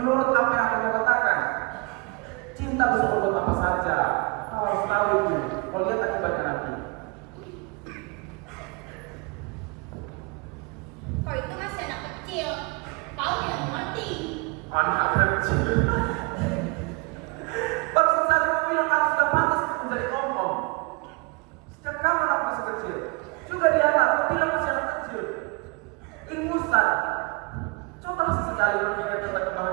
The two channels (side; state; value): left; quieter; 28.9 dB